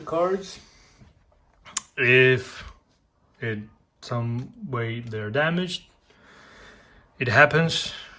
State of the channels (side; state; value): both; identical; correlation 1.00